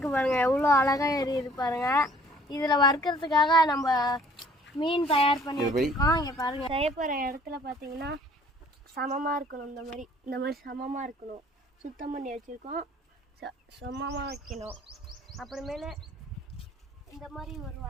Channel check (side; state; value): both; normal; correlation 0.56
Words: பாருங்க, எவ்வளோ அழகா எரியுது பாருங்க. இதில் வறுக்கிறதுக்காக நம்ம மீன் தயார் பண்ணி வச்சுருக்கோம். இங்கே பாருங்க, செய்ய போகிற இடத்துல பார்த்தீங்கன்னா சமமாக இருக்கணும், இந்த மாதிரி சமமாக இருக்கணும். சுத்தம் பண்ணி வச்சுருக்கோம், சமமாக வைக்கணும். அப்புறமேல இந்த மாதிரி ஒரு